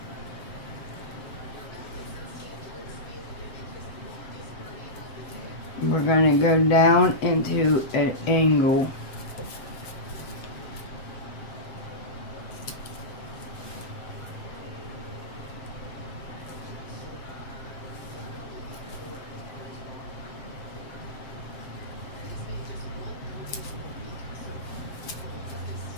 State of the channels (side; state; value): right; late; 7.9 ms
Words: We're going to go down into an angle.